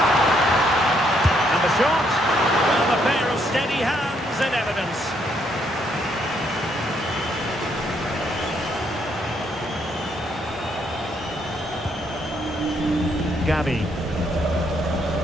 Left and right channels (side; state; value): both; normal; correlation 0.72